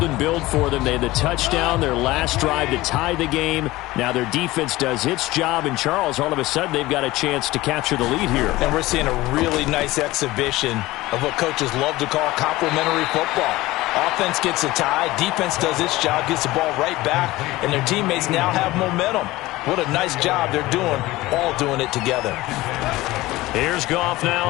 and build for them. They had the touchdown, their last drive to tie the game. Now their defense does its job, and Charles, all of a sudden, they've got a chance to capture the lead here. And we're seeing a really nice exhibition of what coaches love to call complementary football. Offense gets a tie, defense does its job, gets the ball right back, and their teammates now have momentum. What a nice job they're doing, all doing it together. Here's Goff now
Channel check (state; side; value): quieter; right; 18.6 dB